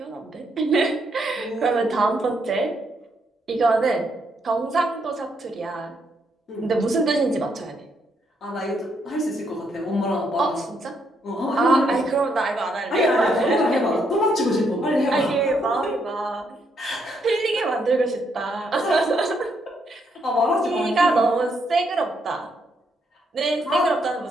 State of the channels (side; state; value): both; normal; correlation 0.75